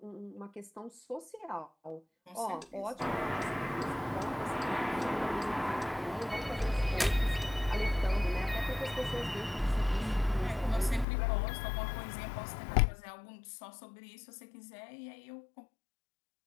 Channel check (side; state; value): right; drops out; at 11.1 s